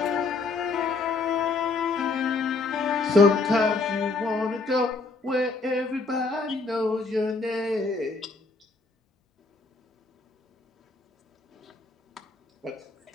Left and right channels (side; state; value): right; quieter; 3.8 dB